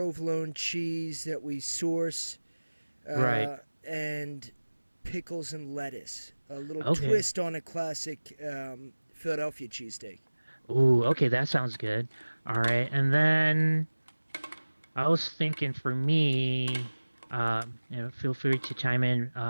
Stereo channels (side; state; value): both; inverted; correlation -1.00